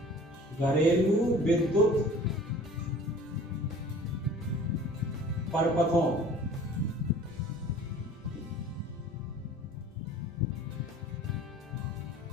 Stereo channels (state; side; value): normal; both; correlation 0.46